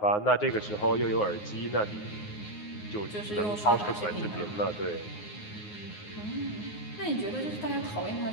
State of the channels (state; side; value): late; right; 9.5 ms